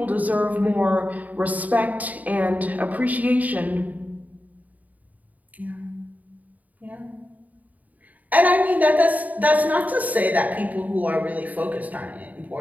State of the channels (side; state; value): left; late; 0.076 ms